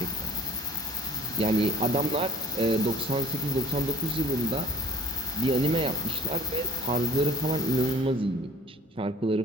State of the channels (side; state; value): both; normal; correlation 0.48